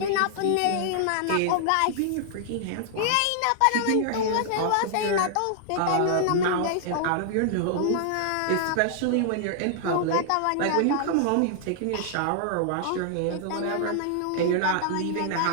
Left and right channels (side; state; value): both; different; correlation -0.01